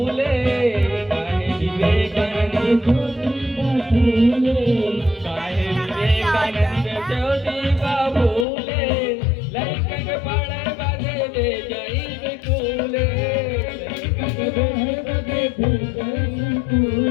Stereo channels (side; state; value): right; drops out; at 8.5 s